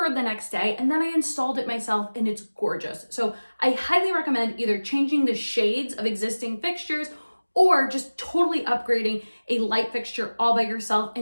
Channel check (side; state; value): both; inverted; correlation -1.00